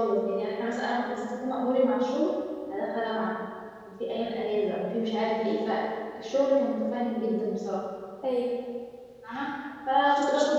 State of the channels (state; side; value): identical; both; correlation 1.00